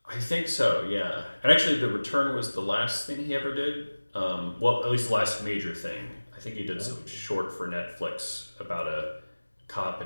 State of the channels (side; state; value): both; inverted; correlation -1.00